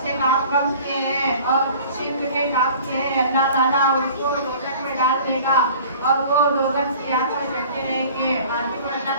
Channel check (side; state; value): both; inverted; correlation -0.46